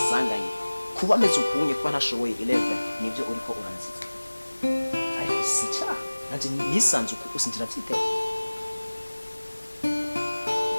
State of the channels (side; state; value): both; inverted; correlation -1.00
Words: kuba meze ukunye kuba ntashoboye 11 nibyo uriko uranziza ariko si icaha nanje nisanze uko usinjira byiteye